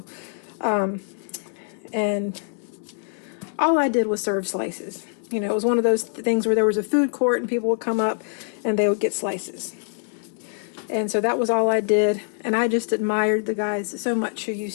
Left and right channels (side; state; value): right; silent; digital silence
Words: and all I did was serve slices. You know, it was one of those things where there was a food court and people would come up and they would get slices. And so that was all I did. And I just admired the guys so much who